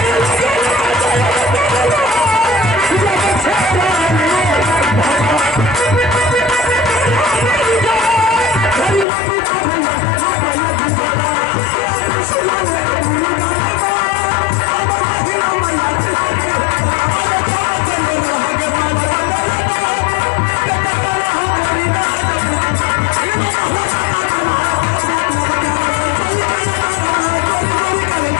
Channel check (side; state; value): right; drops out; at 9.1 s